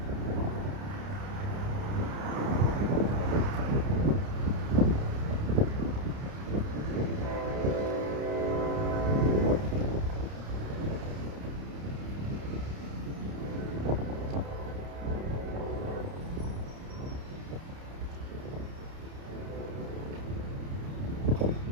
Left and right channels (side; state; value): left; late; 30 ms